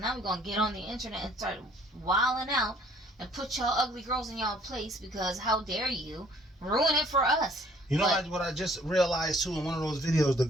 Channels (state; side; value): normal; both; correlation 0.58